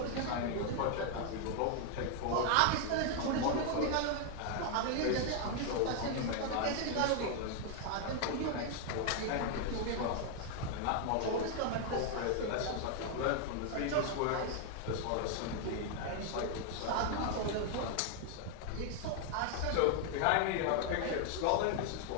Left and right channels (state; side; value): different; both; correlation 0.00